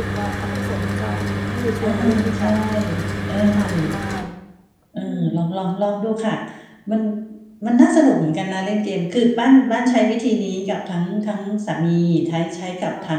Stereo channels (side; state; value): both; identical; correlation 1.00